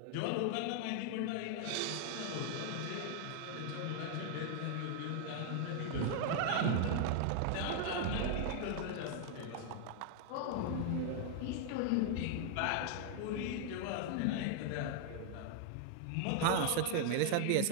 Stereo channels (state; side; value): different; both; correlation 0.00